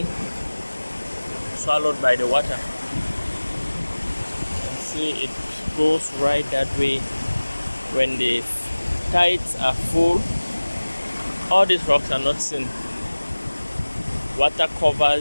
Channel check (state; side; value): inverted; both; correlation -1.00